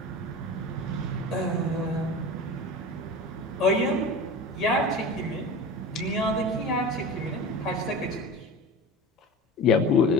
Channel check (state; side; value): normal; both; correlation 0.32